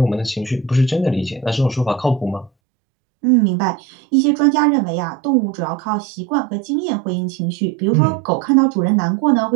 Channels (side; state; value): left; drops out; at 2.5 s